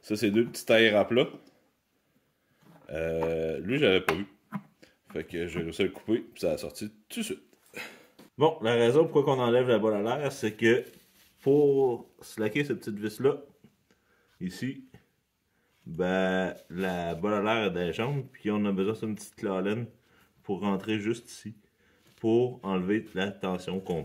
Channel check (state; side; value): identical; both; correlation 1.00